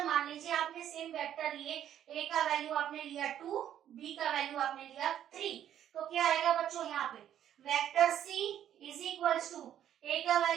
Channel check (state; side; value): quieter; left; 10.6 dB